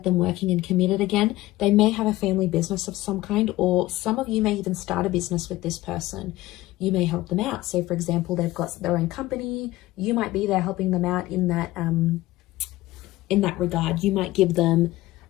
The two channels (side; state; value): right; quieter; 17.5 dB